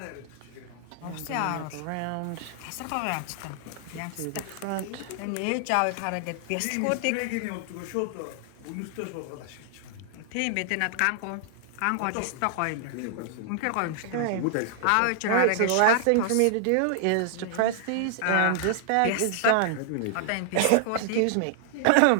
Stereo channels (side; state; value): both; different; correlation -0.01